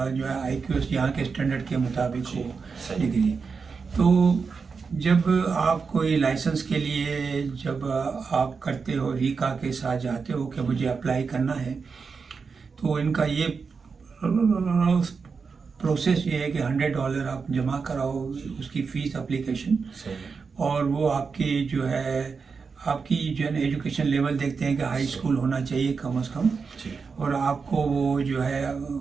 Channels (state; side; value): quieter; left; 5.2 dB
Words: जो है IQ यहाँ के स्टैंडर्ड के मुताबिक जी, हो सही। डिग्री। तो जब आप कोई लाइसेंस के लिए जब आप करते हो, रीका के साथ जाते हो कि मुझे अप्लाई करना है, तो इनका ये प्रोसेस ये है कि $100 आप जमा कराओ, उसकी फ़ीस एप्लीकेशन, सही। और वो आपकी जो है एजुकेशन लेवल देखते हैं कि हाई स्कूल होना चाहिए कम से कम, जी। और आपको वो जो है